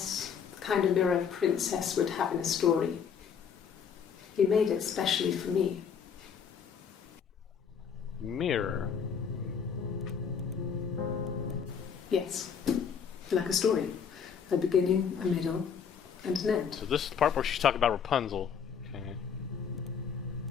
the kind of mirror a princess would have in a story. He made it specially for me. Mirror. Yes, like a story. A beginning, a middle, and an end. So this is the part where she's talking about Rapunzel. Okay.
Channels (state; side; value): quieter; right; 7.0 dB